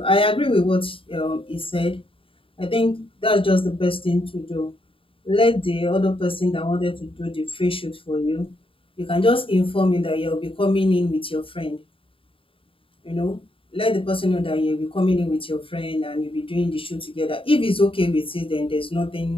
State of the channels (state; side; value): late; right; 0.26 ms